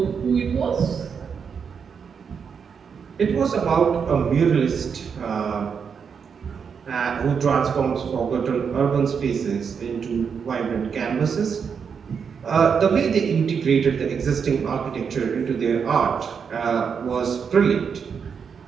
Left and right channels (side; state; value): left; quieter; 6.5 dB